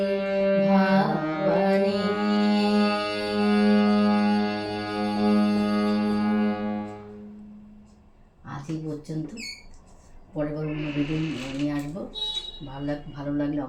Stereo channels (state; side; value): identical; both; correlation 1.00